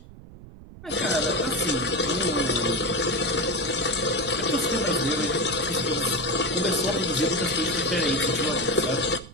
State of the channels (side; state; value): right; noise; rumble, 17 dB below the sound